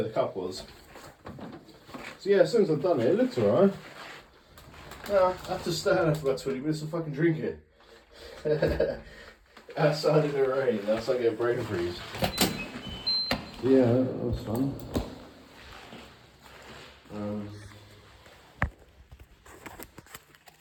the cup was. So yeah, as soon as I've done it, it looks alright. Now I have to stand there for about 20 minutes and fucking drink it. Outside in the rain, that's like a brain freeze. Yeah, that was fun.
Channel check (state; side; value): identical; both; correlation 1.00